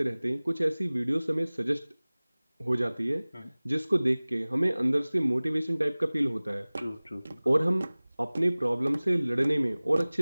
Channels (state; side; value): inverted; both; correlation -0.99